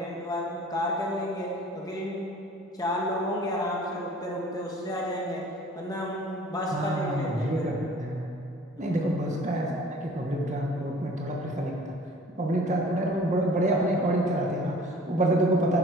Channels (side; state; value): both; normal; correlation 0.49